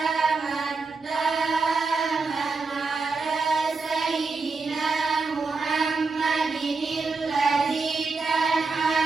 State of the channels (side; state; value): left; quieter; 4.2 dB